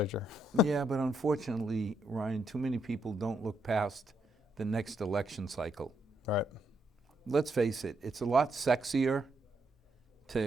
Yeah, but unfortunately, Ryan, too many people don't look past the next election cycle. Right. Let's face it, it's a lot sexier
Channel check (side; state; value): both; normal; correlation 0.78